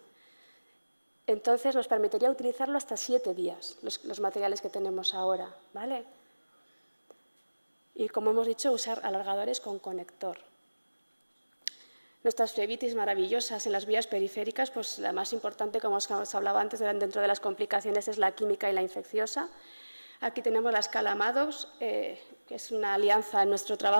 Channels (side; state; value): both; inverted; correlation -1.00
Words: Entonces nos permitiría utilizarlo hasta 7 días, los materiales que tenemos ahora, ¿vale? Y como hemos dicho, usar alargadores con conector. Nuestras flebitis maravillosas en las vías periféricas, pues la más importante, como os hablaba antes, dentro de las complicaciones es la química y la infecciosa. Aquí tenemos la escala Maddox, que es una alianza en nuestro